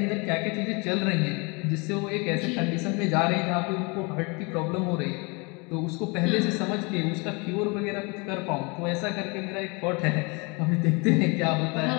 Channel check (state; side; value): quieter; right; 29.6 dB